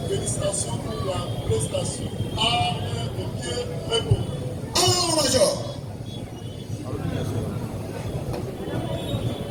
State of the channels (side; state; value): both; identical; correlation 1.00